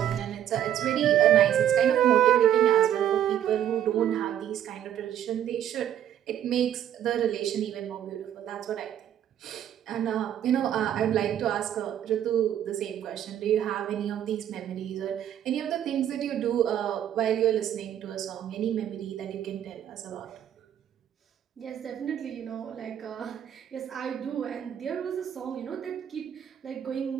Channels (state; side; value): quieter; left; 10.6 dB